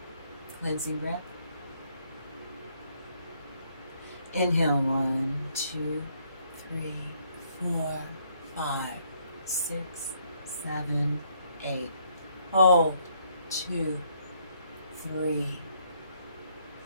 Cleansing breath. Inhale. 1, 2, 3, 4, 5, 6, 7, 8. Hold. 2, 3,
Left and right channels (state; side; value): inverted; both; correlation -0.70